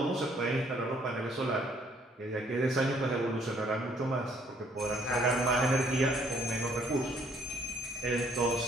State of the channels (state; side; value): normal; both; correlation 0.64